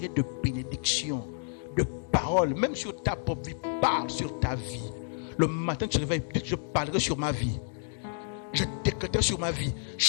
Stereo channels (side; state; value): right; silent; digital silence